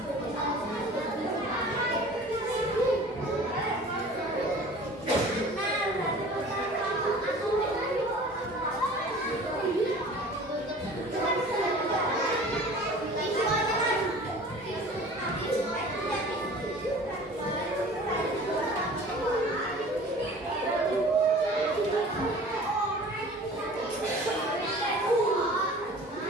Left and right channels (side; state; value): both; normal; correlation 0.44